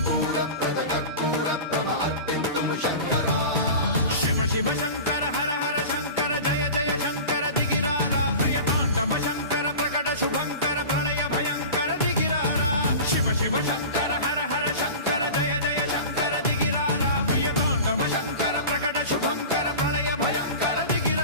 శూరప్రద కర్పూర ప్రభ అర్పింతుము శంకరా శివ శివ శంకర హర హర శంకర జయ జయ శంకర దిగిరారా ప్రియ తాండవ శంకర ప్రకట శుభంకర ప్రళయ భయంకర దిగిరారా శివ శివ శంకర హర హర శంకర జయ జయ శంకర దిగిరారా ప్రియ తాండవ శంకర ప్రకట శుభంకర ప్రళయ భయంకర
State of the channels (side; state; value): both; inverted; correlation -0.33